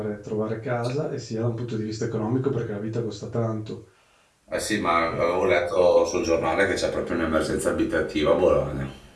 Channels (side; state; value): both; identical; correlation 1.00